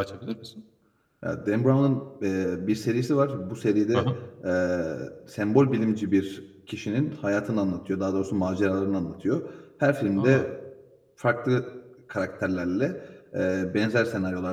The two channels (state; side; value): identical; both; correlation 1.00